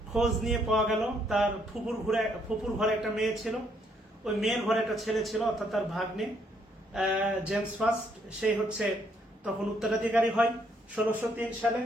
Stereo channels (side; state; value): both; normal; correlation 0.71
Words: খোঁজ নিয়ে পাওয়া গেল তার ফুপুর ঘরে একটা মেয়ে ছিল। ওই মেয়ের ঘরে একটা ছেলে ছিল, অর্থাৎ তার ভাগ্নে জেমস ফার্স্ট, সেই হচ্ছে তখন উত্তরাধিকারী হয় 1603 সালে।